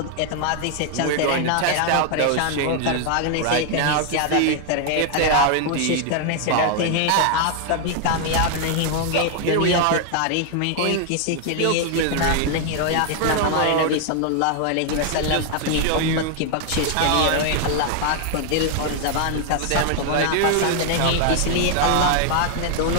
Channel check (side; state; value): both; different; correlation 0.00